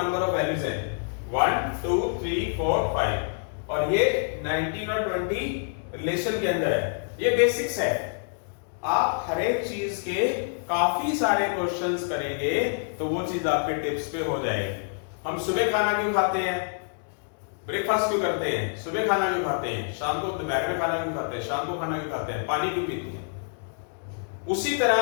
ऑफ वैल्यूज है 1 2 3 4 5, और ये 19 और 20 रिलेशन के अंदर है। ये बेसिक्स है, आप हर एक चीज के काफी सारे क्वेश्चंस करेंगे तो वो चीज आपके टिप्स पे हो जाएगी। हम सुबह खाना क्यों खाते हैं? ब्रेकफास्ट क्यों करते हैं? सुबह खाना क्यों खाते हैं? शाम को दोपहर में खाना क्यों खाते हैं? शाम को खाना क्यों खाते हैं? पानी क्यों पीते हैं? उसी तरह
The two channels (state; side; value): silent; right; digital silence